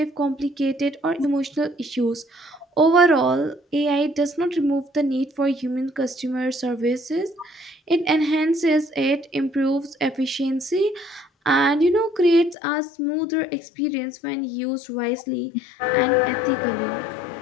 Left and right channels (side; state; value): right; drops out; at 12.6 s